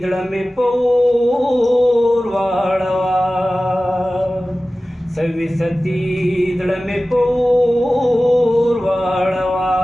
زړه مې پور واړوه سویستی زړه مې پور واړوه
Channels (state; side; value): normal; both; correlation 0.96